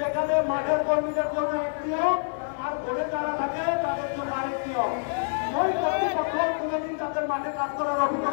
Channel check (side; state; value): right; silent; digital silence